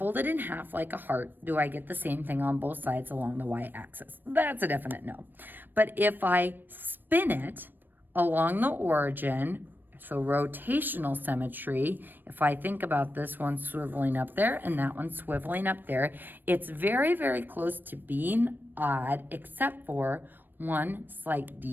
it in half like a heart, do I get the same thing on both sides along the y-axis? That's a definite no. But if I spin it along the origin, so rotational symmetry, if I think about this one swiveling up there and that one swiveling up there, it's very, very close to being odd, except for one slight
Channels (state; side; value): late; left; 0.093 ms